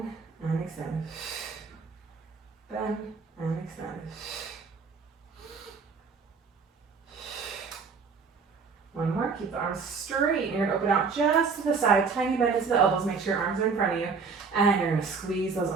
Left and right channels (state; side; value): quieter; left; 5.2 dB